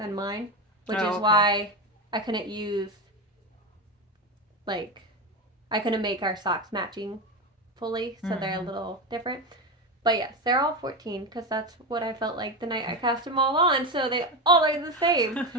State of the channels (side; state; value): both; normal; correlation 0.17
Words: mine, which is why I couldn't use, like, I couldn't make our socks matching fully, so they're a little different. But yes, they're all 14 because that's what I felt like the night I cast them all on, so they all are the same.